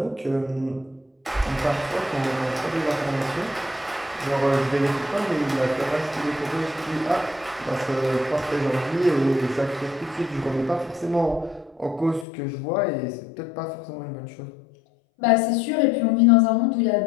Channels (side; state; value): right; drops out; at 12.2 s